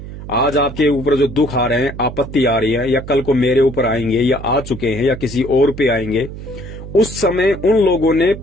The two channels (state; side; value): noise; right; hum, 11 dB below the sound